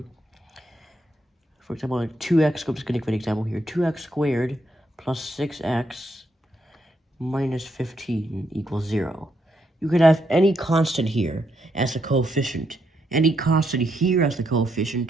for example, 2x, I'm just going to give an example here, 2x squared plus 6x minus 15 equals 0. You could have any constant here as the coefficient, any constant here as the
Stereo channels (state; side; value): normal; both; correlation 0.78